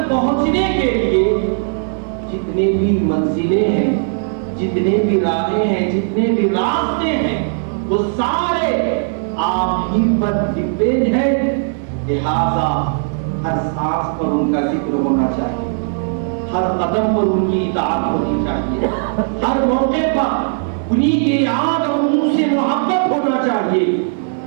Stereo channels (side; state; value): left; silent; digital silence